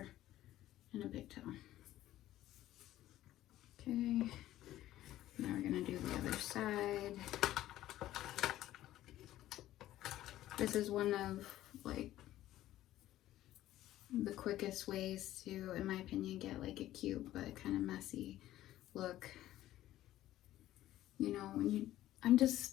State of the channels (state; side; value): quieter; right; 14.1 dB